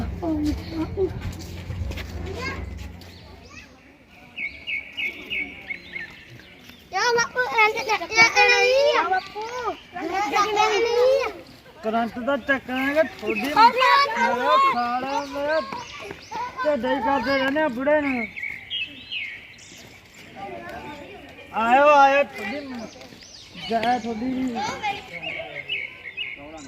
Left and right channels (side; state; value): both; identical; correlation 1.00